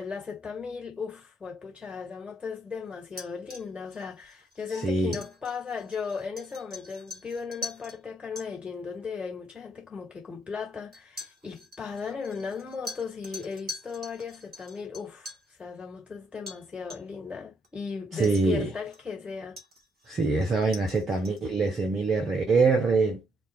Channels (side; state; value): both; normal; correlation 0.73